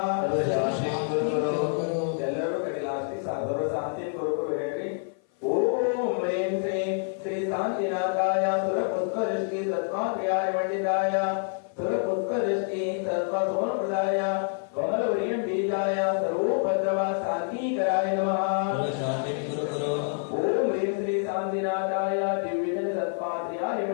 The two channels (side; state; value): right; silent; 56 dB below the other